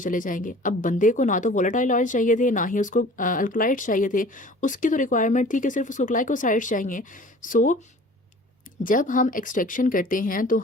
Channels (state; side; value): normal; both; correlation 0.46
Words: चले जाएंगे। अब बंदे को ना तो वोलाटाइल ऑयल्स चाहिए थे, ना ही उसको अल्कलाइड्स चाहिए थे। उसकी तो रिक्वायरमेंट थी कि सिर्फ उसको ग्लाइकोसाइड्स चाहिए। सो जब हम एक्सट्रैक्शन करते हैं तो